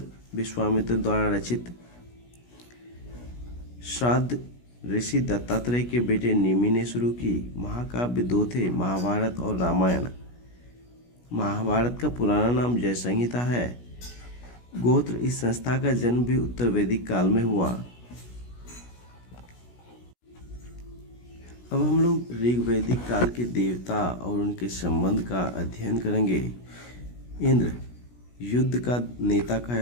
विश्वामित्र द्वारा रचित। श्राद्ध ऋषि दत्तात्रेय के बेटे निमि ने शुरू की। महाकाव्य दो थे, महाभारत और रामायण। महाभारत का पुराना नाम जय संहिता है। गोत्र, इस संस्था का जन्म भी उत्तर वैदिक काल में हुआ। अब हम लोग ऋग वैदिक काल के देवता और उनके संबंध का अध्ययन करेंगे। इंद्र युद्ध का नेता कहा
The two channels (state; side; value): late; right; 17 ms